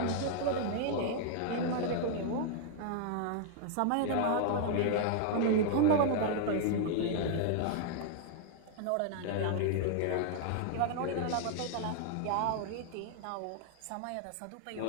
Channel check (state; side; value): different; both; correlation -0.01